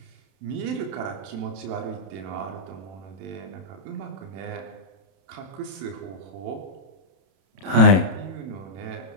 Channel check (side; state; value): left; late; 31 ms